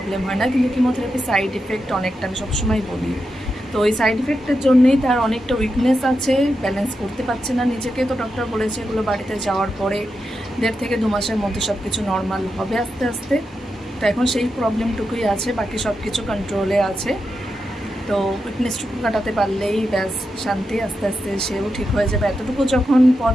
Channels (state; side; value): normal; both; correlation 0.87